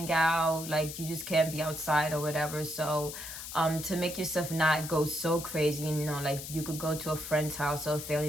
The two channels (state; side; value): noise; left; hiss, 9 dB below the sound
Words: out, like you just can't be outside or whatever. So to make yourself not go so crazy. You know, like you could go to a friend's house or a